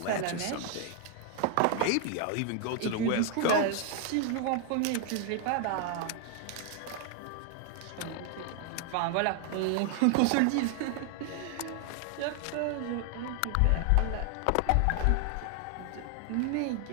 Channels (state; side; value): different; both; correlation 0.00